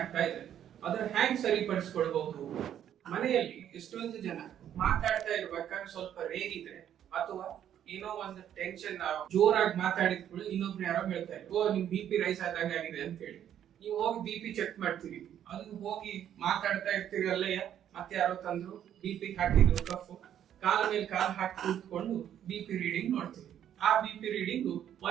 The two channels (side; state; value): left; quieter; 10.2 dB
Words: ಇದೆ. ಅದರ ಹ್ಯಾಂಗ್ ಸರಿಪಡಿಸ್ಕೊಳ್ಬಹುದು? ಮನೆಯಲ್ಲಿ ಎಷ್ಟೊಂದು ಜನ ಮಾತಾಡ್ತಾ ಇರ್ಬೇಕಾದ್ರೆ ಸ್ವಲ್ಪ ರೇಗಿದ್ರೆ ಅಥವಾ ಏನೋ ಒಂದು ಟೆನ್ಷನ್ ಜೋರಾಗಿ ಮಾತಾಡಿದ್ಗಳು ಇನ್ನೊಬ್ರು ಯಾರೋ ಹೇಳ್ತಾರೆ, ಓ ನಿಮ್ BP ರೈಸ್ ಆದಾಗ ಆಗಿದೆ ಅಂತ ಹೇಳಿ ನೀವು ಹೋಗಿ BP ಚೆಕ್ ಮಾಡ್ತೀರಿ. ಅದು ಹೋಗಿ ಮಾತಾಡ್ತಾ ಇರ್ತೀರಿ ಅಲ್ಲಯ್ಯ, ಮತ್ತೆ ಯಾರೋ ತಂದ್ರು BP ಹಾಕಿದ್ರು ಕಫ್, ಕಾಲ ಮೇಲೆ ಕಾಲ್ ಹಾಕಿ ಕೂತ್ಕೊಂಡು BP ರೀಡಿಂಗ್ ನೋಡ್ತೀವಿ. ಆ BP ರೀಡಿಂಗ್